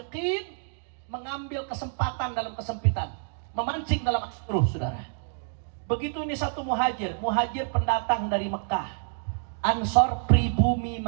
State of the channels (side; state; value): left; silent; digital silence